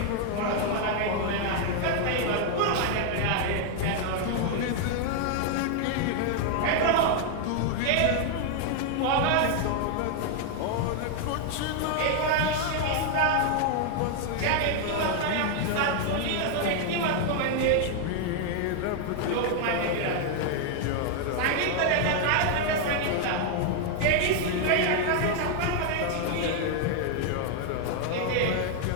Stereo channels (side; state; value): both; different; correlation 0.00